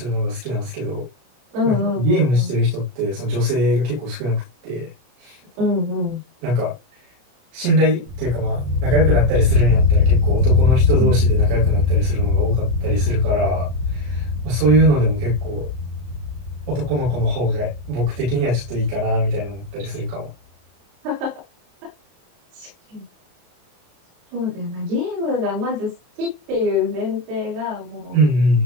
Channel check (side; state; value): left; late; 33 ms